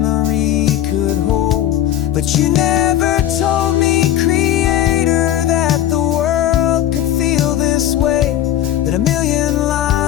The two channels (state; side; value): quieter; right; 12.0 dB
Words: could hold. But you never told me, Creator, that the world could feel this way, that a million